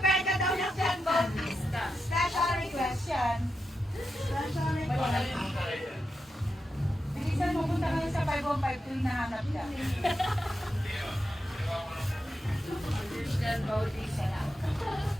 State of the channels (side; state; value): both; normal; correlation 0.87